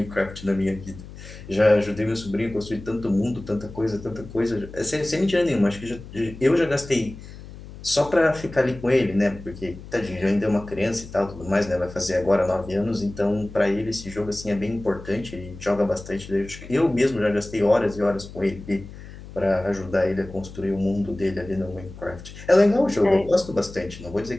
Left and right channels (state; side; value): noise; left; hum, 15 dB below the sound